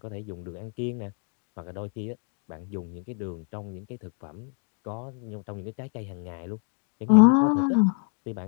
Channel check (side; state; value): right; quieter; 37.9 dB